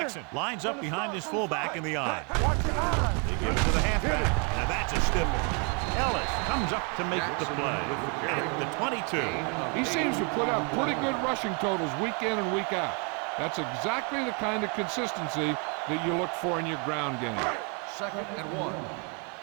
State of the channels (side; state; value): left; quieter; 35.7 dB